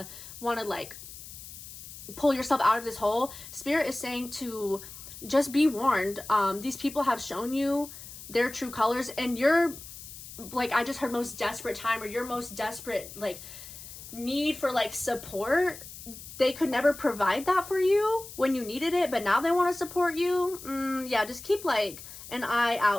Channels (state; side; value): noise; left; hiss, 14 dB below the sound